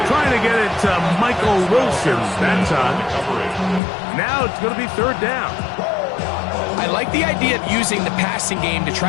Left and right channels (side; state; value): right; drops out; at 3.8 s